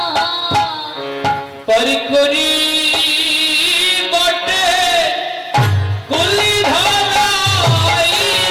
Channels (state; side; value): identical; both; correlation 1.00